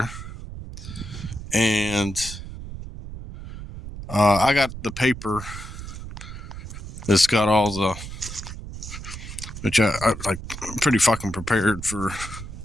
and I got the paper that's got all the, which I like, I'm pretty fucking prepared for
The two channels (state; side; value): noise; right; rumble, 10 dB below the sound